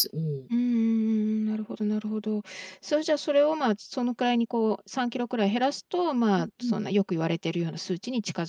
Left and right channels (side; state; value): both; identical; correlation 1.00